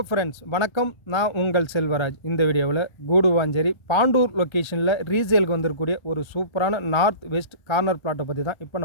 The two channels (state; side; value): late; right; 1.3 ms